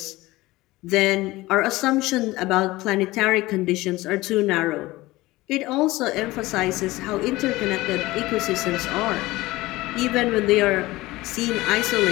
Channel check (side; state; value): right; quieter; 19.2 dB